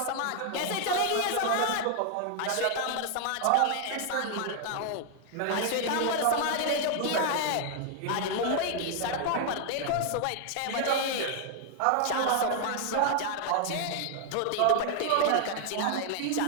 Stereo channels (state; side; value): different; both; correlation 0.00